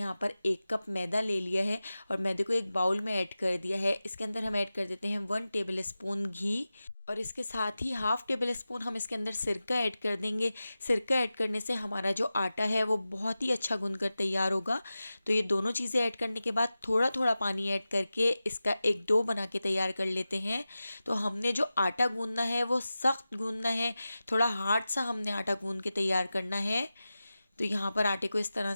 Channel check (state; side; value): inverted; both; correlation -0.95